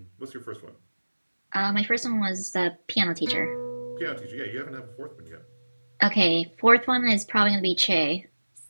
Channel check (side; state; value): both; inverted; correlation -1.00